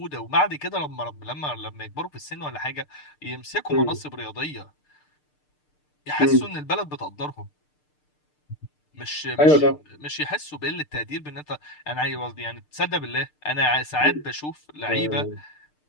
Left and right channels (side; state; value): right; late; 6.7 ms